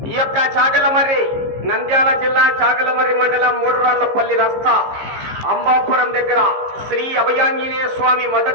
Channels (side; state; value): left; late; 15 ms